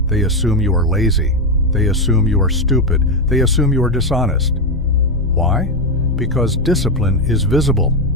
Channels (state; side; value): normal; both; correlation 0.09